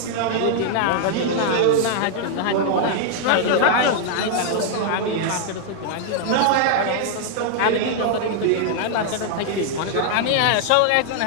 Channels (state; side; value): different; both; correlation -0.01